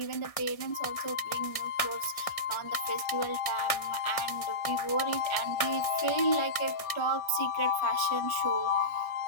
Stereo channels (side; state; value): right; late; 1.6 ms